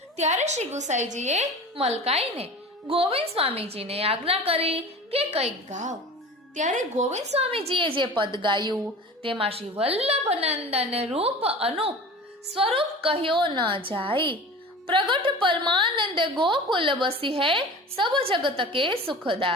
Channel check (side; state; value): both; normal; correlation 0.36